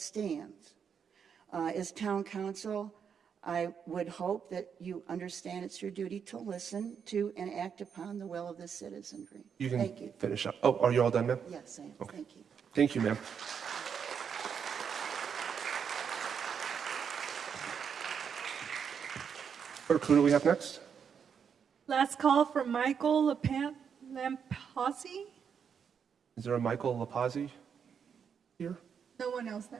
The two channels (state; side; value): quieter; left; 7.2 dB